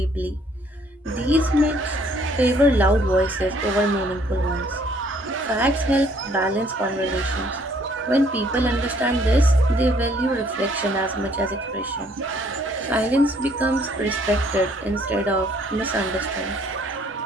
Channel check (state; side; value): normal; both; correlation 0.63